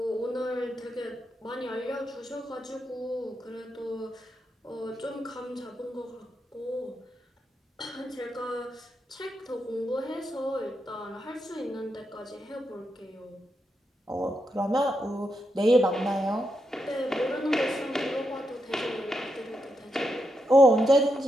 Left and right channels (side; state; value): both; normal; correlation 0.84